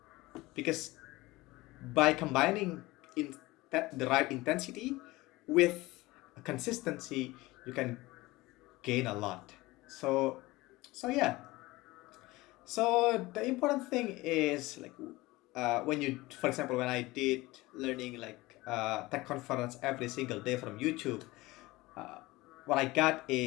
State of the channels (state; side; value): quieter; right; 20.3 dB